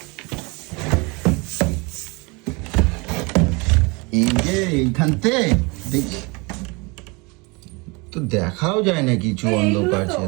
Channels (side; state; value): left; quieter; 27.8 dB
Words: এই যে এইখানতে দেখি তো দেখাও যায় না কিছু, অন্ধকার